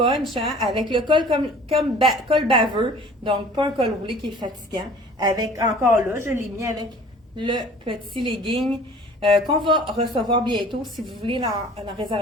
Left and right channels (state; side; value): normal; both; correlation 0.48